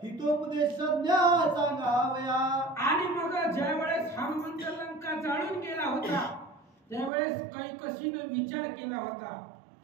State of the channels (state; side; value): drops out; left; at 7.1 s